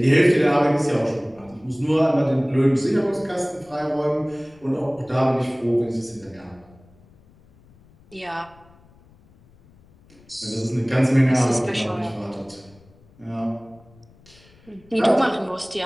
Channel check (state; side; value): noise; left; rumble, 28 dB below the sound